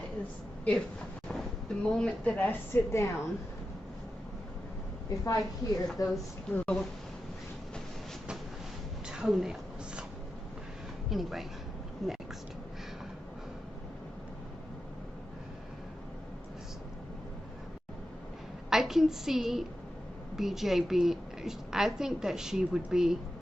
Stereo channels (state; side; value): normal; both; correlation 0.90